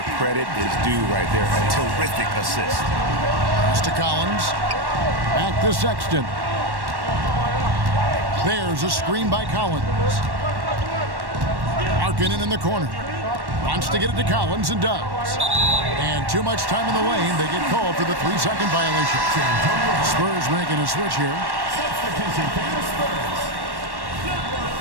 credit is due right there. A terrific assist. Pass to Collins. Back to Sexton. There's a screen by Collins. Markkanen in the corner. Wants to get it to Collins and does. And too much time in the lane. They get called for the 3-second violation. Spurs making a switch here. Substitution for the Spurs. Number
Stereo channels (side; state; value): left; late; 1.1 ms